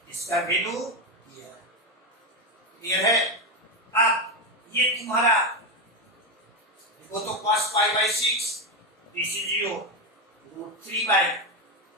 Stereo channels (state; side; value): normal; both; correlation 0.10